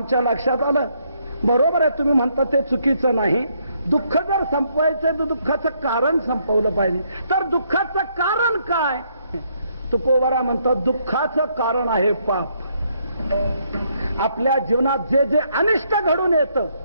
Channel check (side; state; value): both; inverted; correlation -0.72